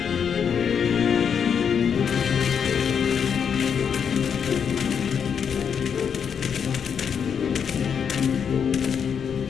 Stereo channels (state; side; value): quieter; right; 7.3 dB